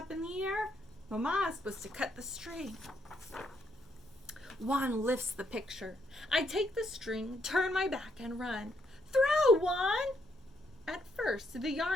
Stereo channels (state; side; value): normal; both; correlation 0.75